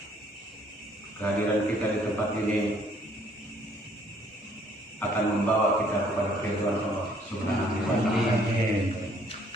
kehadiran kita di tempat ini akan membawa kita kepada keridhaan Allah Subhanahu wa taala.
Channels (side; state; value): both; normal; correlation 0.62